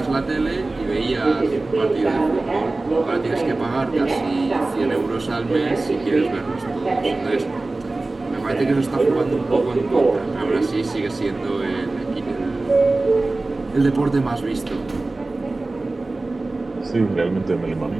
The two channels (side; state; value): left; quieter; 3.2 dB